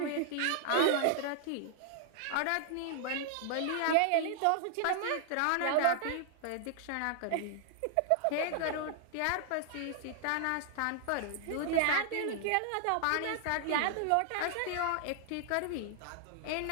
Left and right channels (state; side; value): different; both; correlation -0.01